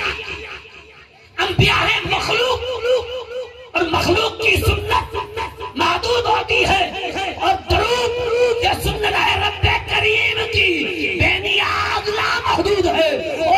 अंबिया है मखलूक और मखलूक की सुन्नत महदूद होती है और दुरूद ये सुन्नत है रब्बे करीम की बेनियाज लामहदूद है।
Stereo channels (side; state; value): both; identical; correlation 1.00